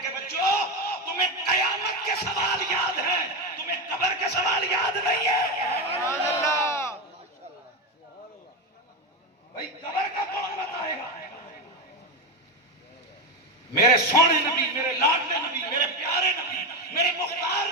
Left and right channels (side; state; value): both; normal; correlation 0.14